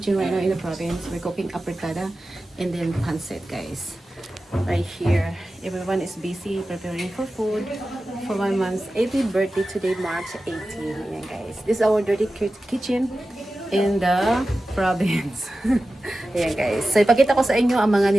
right now in the province. We're cooking apretada and then pancit guys. Right here, everyone is busy preparing for food for my mom's 80th birthday today, March 18. Ayan guys, this is our dirty kitchen in the province. Ayan guys, so ipakita ko sa inyo ang mga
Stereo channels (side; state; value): both; normal; correlation 0.94